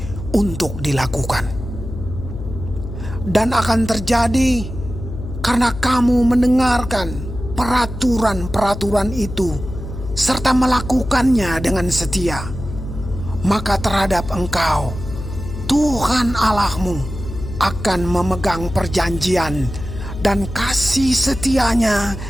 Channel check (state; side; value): noise; left; hum, 9 dB below the sound